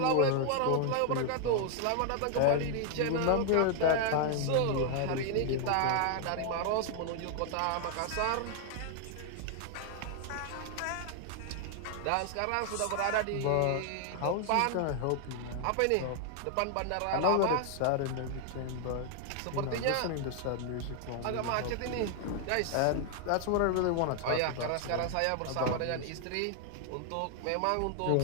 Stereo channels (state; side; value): different; both; correlation 0.00